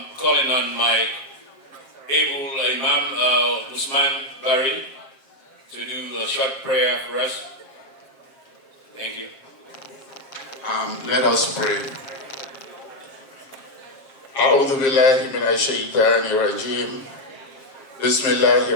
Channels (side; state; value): right; late; 7.5 ms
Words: calling on my able Imam Usman Bari to do a short prayer for us. Thank you. Let us pray. أعوذ بالله من الشيطان الرجيم. بسم الله